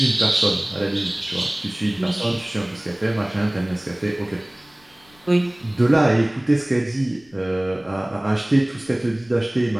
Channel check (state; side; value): noise; left; rumble, 30 dB below the sound